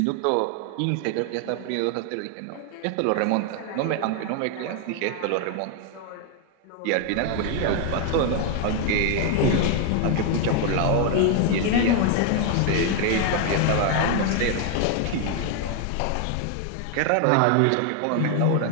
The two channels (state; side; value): different; both; correlation 0.01